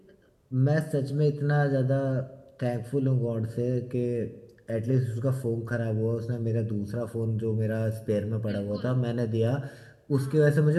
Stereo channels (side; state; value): both; identical; correlation 1.00